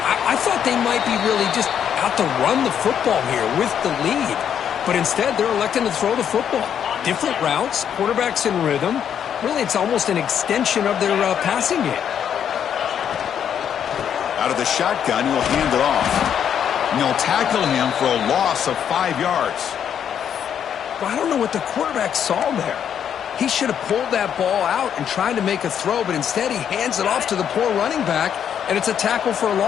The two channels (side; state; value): right; quieter; 8.8 dB